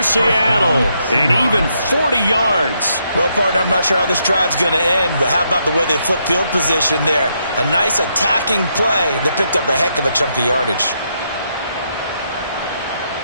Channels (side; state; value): both; inverted; correlation -0.78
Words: Seattle, and even 40 yards. Well, partner, I'm not sure how this drive's going to end, but how about the way they flip field position there? A nice attacking play. They picked up a heck of a chunk of yardage.